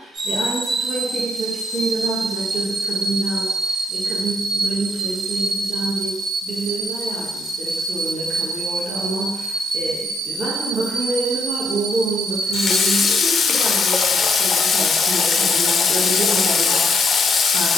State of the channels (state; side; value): normal; both; correlation 0.73